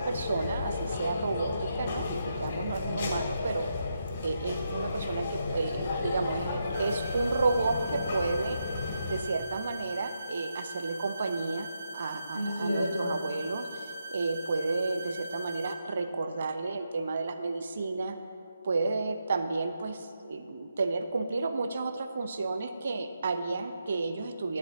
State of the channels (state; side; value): inverted; both; correlation -0.82